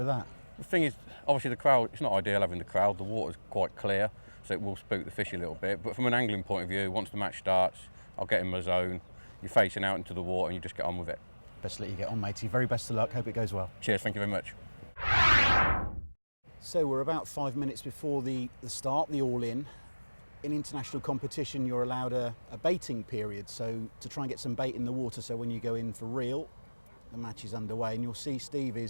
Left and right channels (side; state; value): both; inverted; correlation -1.00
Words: that? The thing is, obviously the crowd, it's not ideal having the crowd. The water's quite clear, so it will spook the fish a little bit. But from an angling point of view, once the match starts, I'll get in my zone. You're facing out into the water and you just get on with it. Best to let you get on, matey. Very best of luck. Hope it goes well. Cheers, thank you very much. So we're about 5 minutes before the start, the all-in. In international competition, you're allowed a baiting period, so to try and get some bait in the water, so when you go in for real, the match is underway, and you'll see Steve